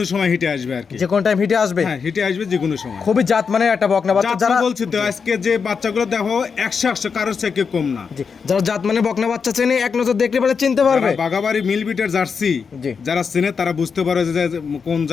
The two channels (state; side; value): quieter; right; 5.8 dB